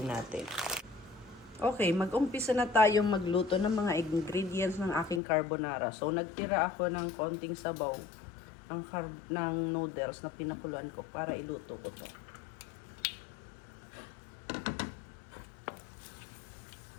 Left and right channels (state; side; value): drops out; right; at 5.2 s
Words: natin. Okay, mag-umpisa na tayong magluto ng mga ingredients ng aking carbonara. So, nagtira ako ng konting sabaw ng noodles na pinakuluan ko para iluto ko to.